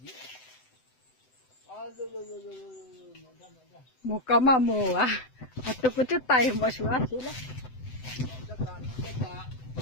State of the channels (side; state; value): right; late; 7.9 ms